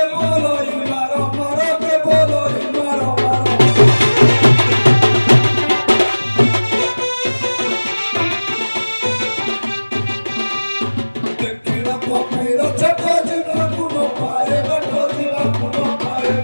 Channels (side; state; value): both; inverted; correlation -1.00